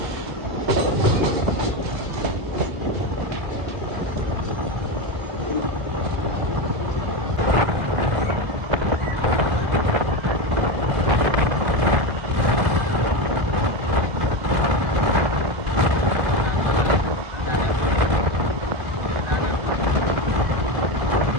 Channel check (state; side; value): late; left; 2.0 ms